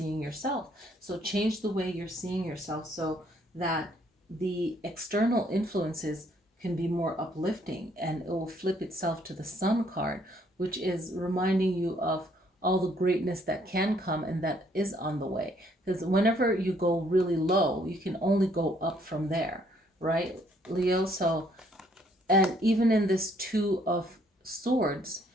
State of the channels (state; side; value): normal; both; correlation 0.66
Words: yourself. So change the way you're seeing yourself, so that the external influences can be more uplifting, and it will flip itself to the Sun card, which is reminding you of all the greatness that can come and that is on the way. Because whenever you go really low, you can only go up from there, right, Leo? So, and even in this Two of Swords,